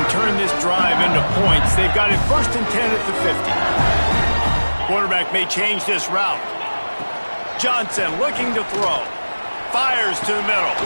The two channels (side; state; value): both; inverted; correlation -1.00